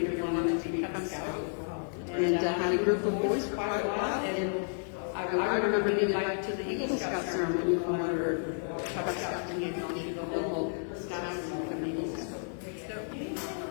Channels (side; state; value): right; silent; digital silence